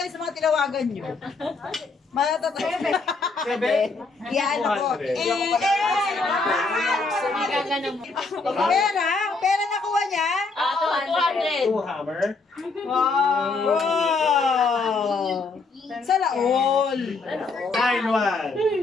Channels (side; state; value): right; quieter; 3.9 dB